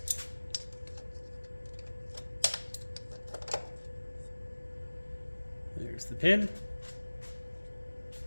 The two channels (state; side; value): inverted; both; correlation -1.00